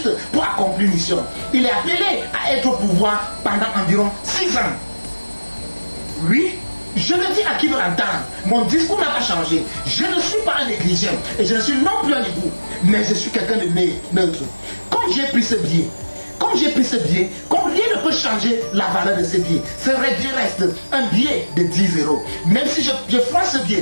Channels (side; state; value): both; inverted; correlation -1.00